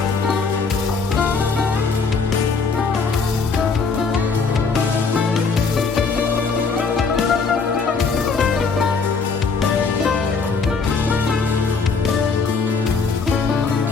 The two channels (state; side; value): quieter; right; 4.8 dB